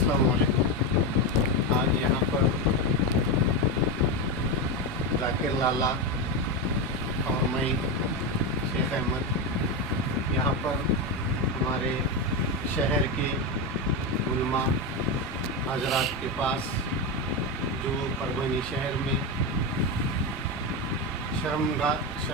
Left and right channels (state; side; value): normal; both; correlation 0.13